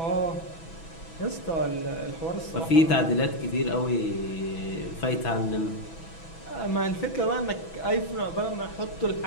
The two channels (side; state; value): right; late; 6.1 ms